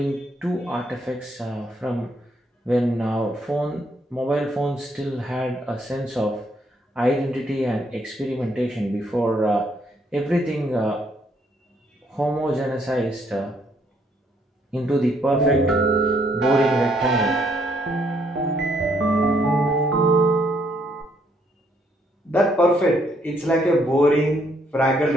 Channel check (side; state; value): both; normal; correlation 0.70